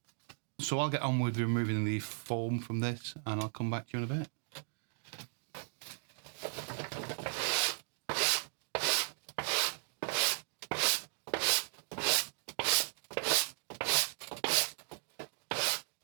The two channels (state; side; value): silent; left; digital silence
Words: So I'll get on with removing the foam from this and I'll come back to you in a bit.